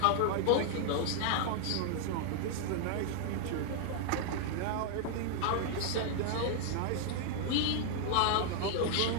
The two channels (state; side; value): different; both; correlation 0.00